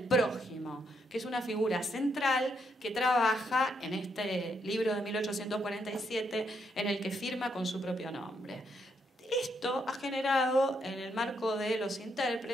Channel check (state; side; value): normal; both; correlation 0.77